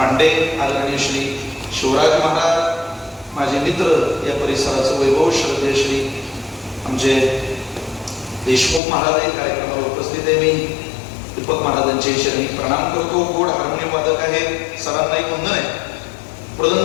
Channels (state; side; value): drops out; right; at 8.8 s